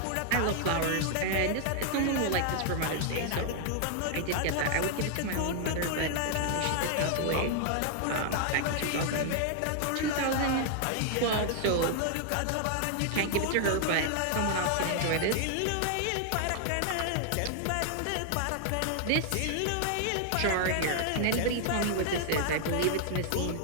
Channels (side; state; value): both; different; correlation 0.00